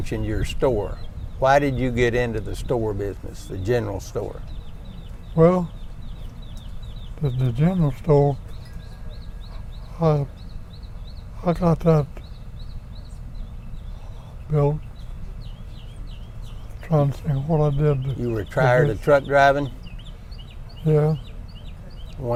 your store. Why did you get into the store business, the general store? Well, the general store, I got that built. Trying to think what I did. You were tired of truck driving? Yeah,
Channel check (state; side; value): identical; both; correlation 1.00